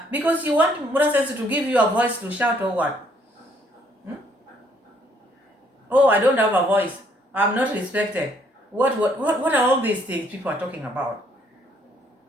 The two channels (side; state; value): both; normal; correlation 0.66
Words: because you want Mura Senso to give you a voice to shout or what? Oh, I don't have a voice. I'm not respected. What are all these things people are talking about?